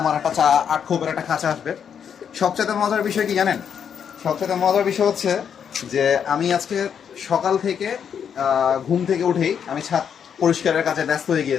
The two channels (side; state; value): right; quieter; 7.8 dB